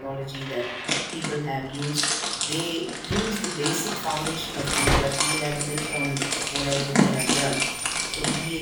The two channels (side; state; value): both; identical; correlation 1.00